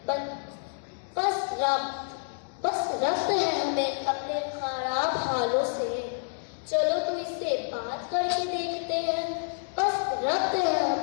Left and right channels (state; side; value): silent; right; digital silence